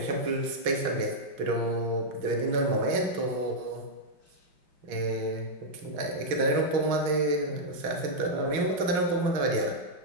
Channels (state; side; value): late; left; 6.1 ms